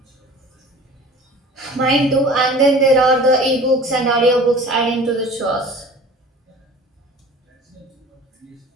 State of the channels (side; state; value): both; normal; correlation 0.43